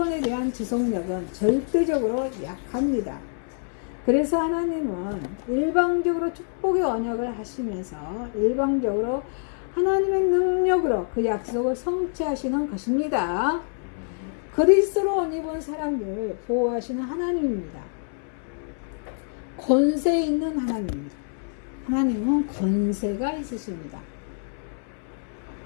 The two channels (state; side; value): silent; right; 61 dB below the other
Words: 대한 지속력은 절대적으로 약합니다. 그래서 하나님은 일방적으로 축복의 언약을 하시면서 일방적으로 하나님의 능력으로 그 약속을 성취하시는 것입니다. 그리스도로 옷 입은 사람들 보호하시는 하나님입니다. 권세 있는 하나님입니다. 하나님은 권세가 있으십니다.